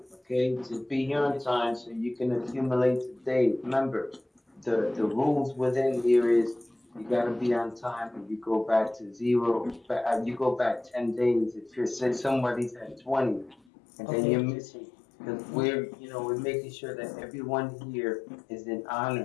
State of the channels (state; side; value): drops out; right; at 13.6 s